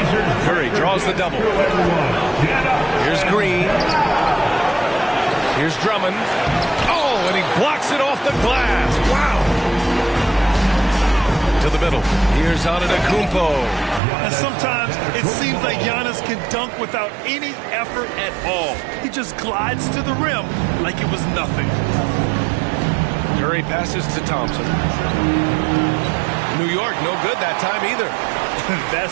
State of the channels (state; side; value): drops out; left; at 14.0 s